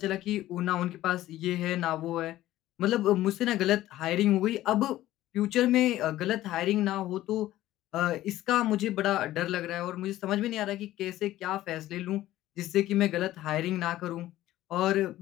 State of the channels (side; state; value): right; quieter; 14.8 dB